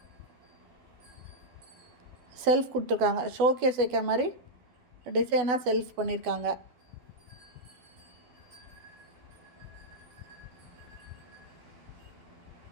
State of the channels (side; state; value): left; late; 12 ms